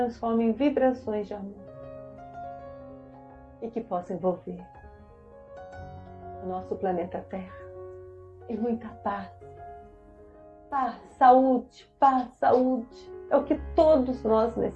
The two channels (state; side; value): identical; both; correlation 1.00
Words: em vibrações de amor e que possam envolver o nosso planeta Terra em muita paz. Paz, saúde, paz, saúde. É o que todos nós